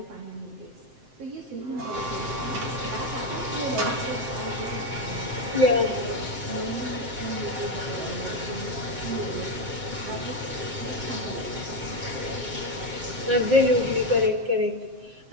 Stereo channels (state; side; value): late; left; 7.7 ms